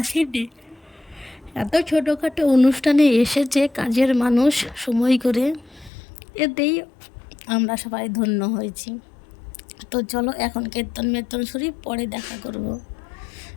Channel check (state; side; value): drops out; right; at 5.9 s